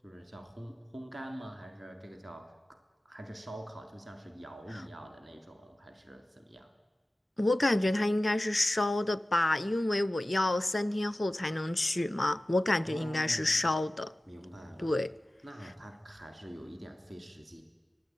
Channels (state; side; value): normal; both; correlation 0.97